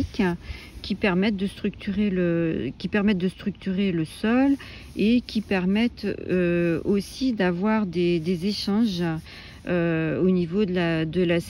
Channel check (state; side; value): identical; both; correlation 1.00